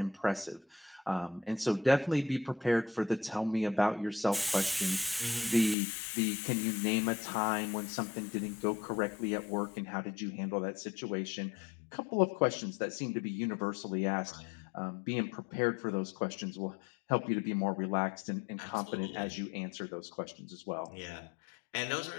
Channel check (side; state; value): right; drops out; at 5.8 s